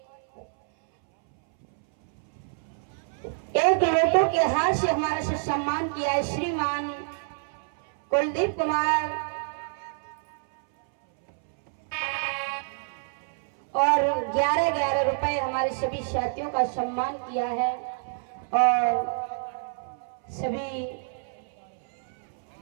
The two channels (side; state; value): left; silent; 60 dB below the other